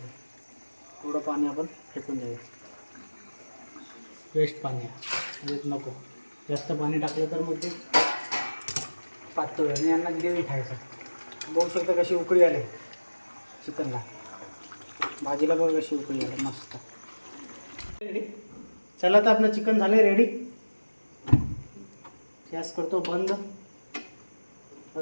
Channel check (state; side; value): inverted; both; correlation -1.00